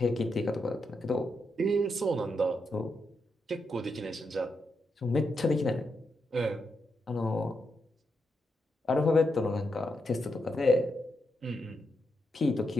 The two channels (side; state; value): both; normal; correlation 0.84